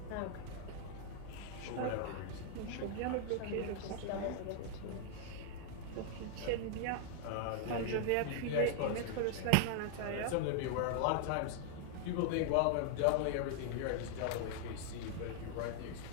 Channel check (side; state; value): both; different; correlation -0.01